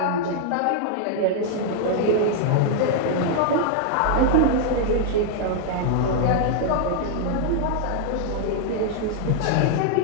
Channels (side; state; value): both; different; correlation 0.00